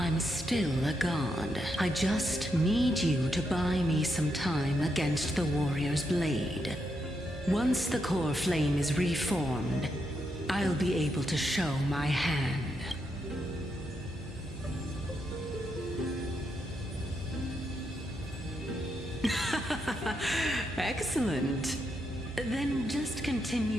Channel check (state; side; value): normal; both; correlation 0.81